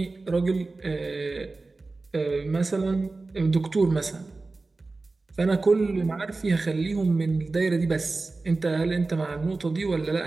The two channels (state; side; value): quieter; left; 3.5 dB